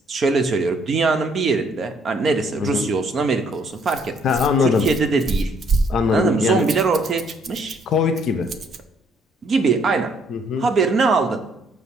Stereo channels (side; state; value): both; normal; correlation 0.65